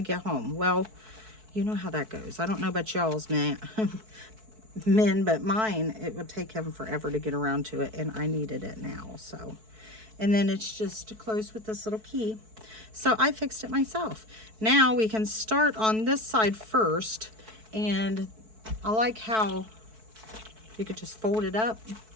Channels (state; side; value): late; left; 4.6 ms